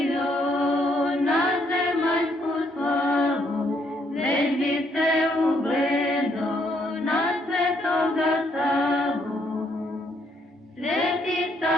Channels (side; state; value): both; normal; correlation 0.72